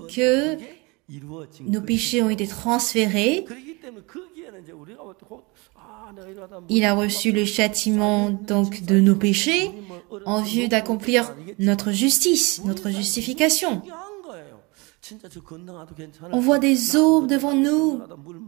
que nos péchés ont été transférés. Il a reçu le châtiment donc de nos péchés en vue d'accomplir notre justice, notre justification. On voit des eaux devant nous.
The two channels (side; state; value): left; quieter; 26.8 dB